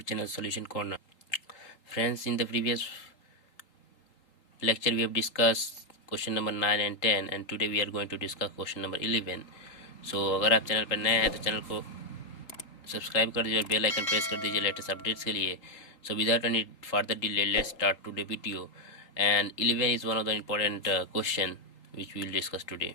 channel Solution Corner. Friends, in the previous lecture we have discussed question number 9 and 10 and today we are going to discuss question number 11. So अगर आप channel पर नए हैं तो channel को subscribe कर दीजिए और बेल आइकन प्रेस कर दीजिए लेटेस्ट अपडेट्स के लिए. So without any further delay, let's start today video. And 11 is one of the important question which we will discuss today.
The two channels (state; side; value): late; right; 3.8 ms